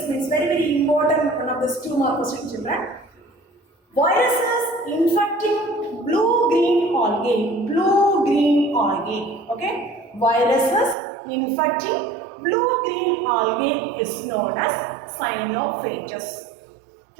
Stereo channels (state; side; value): drops out; left; at 11.0 s